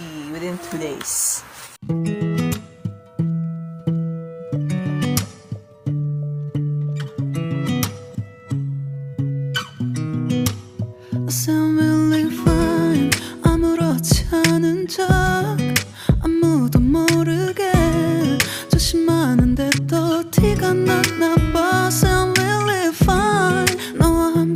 within 2 days. I'm really fine. 아무렇지 않은 척 아무도 모르게 조심하는데 또 티가 났나 봐. I'm really fine. 너와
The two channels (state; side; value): identical; both; correlation 1.00